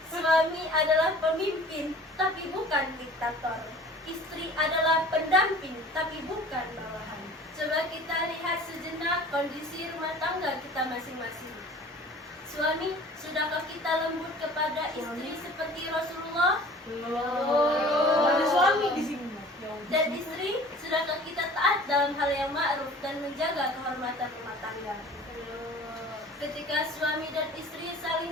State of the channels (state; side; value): normal; both; correlation 0.46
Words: Suami adalah pemimpin, tapi bukan diktator. Istri adalah pendamping, tapi bukan bawahan. Coba kita lihat sejenak kondisi rumah tangga kita masing-masing. Suami, sudahkah kita lembut kepada istri seperti Rasulullah? Ada suami di sini. Dan istri, sudahkah kita taat dalam hal yang ma'ruf dan menjaga kehormatan rumah tangga? Ketika suami dan istri